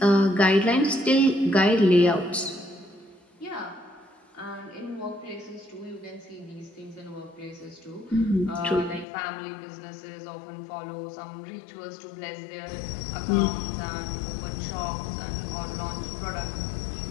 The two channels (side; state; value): right; drops out; at 9.1 s